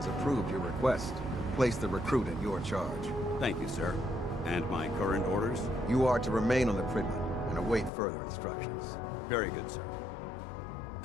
approved your request. Place the recruit in your charge. Thank you, sir. And my current orders? You are to remain on the Prigman and await further instructions. Very good, sir.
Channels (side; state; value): right; drops out; at 7.9 s